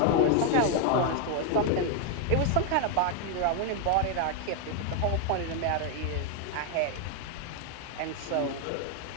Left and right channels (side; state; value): both; different; correlation 0.01